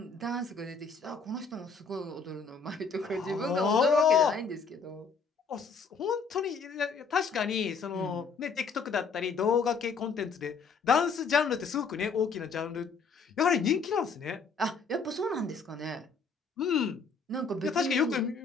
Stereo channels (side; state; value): right; quieter; 5.0 dB